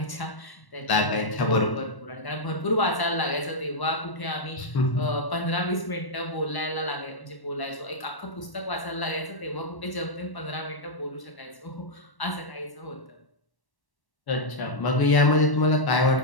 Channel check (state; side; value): late; right; 1.1 ms